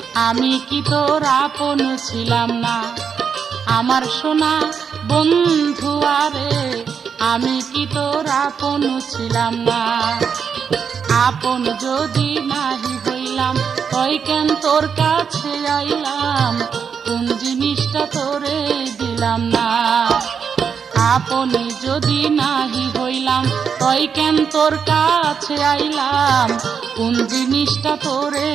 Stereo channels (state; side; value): quieter; left; 6.7 dB